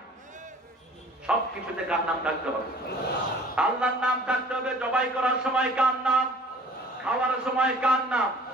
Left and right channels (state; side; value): normal; both; correlation 0.51